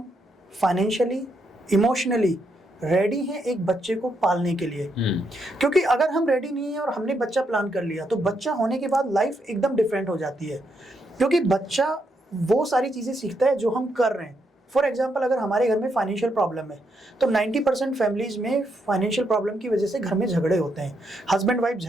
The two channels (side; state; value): both; normal; correlation 0.78